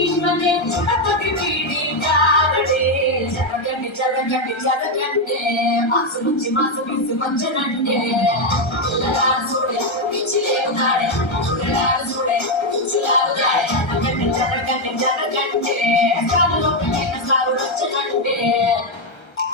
చుడపతి వీడి కారడే జరగండి మాసు నుంచి మాసు తీసుకొచ్చనంటే పిల్లగాడు చూడే పిచ్చిలేవుతాడే పిల్లగాడు చూడే పిచ్చిలాగుతాడే జరగండి సాగులో పిల్లల సాగు వచ్చనంటే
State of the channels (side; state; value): right; late; 1.3 ms